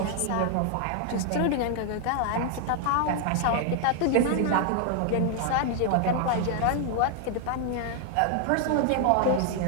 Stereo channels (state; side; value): different; both; correlation 0.00